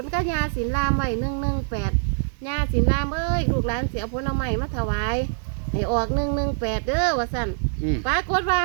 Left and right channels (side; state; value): left; silent; digital silence